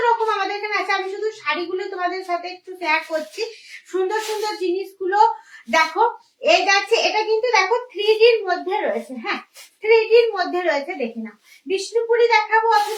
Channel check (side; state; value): both; identical; correlation 1.00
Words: রকম আমাদের এখানে আছে। আমি শুধু শাড়িগুলো তোমাদের সাথে একটু শেয়ার করছি, সুন্দর সুন্দর জিনিসগুলো দেখো। এই যাচ্ছে, এটা কিন্তু দেখো 3Dর মধ্যে রয়েছে। হ্যাঁ, 3Dর মধ্যে রয়েছে, দেখে নাও। বিষ্ণুপুরি দেখাবো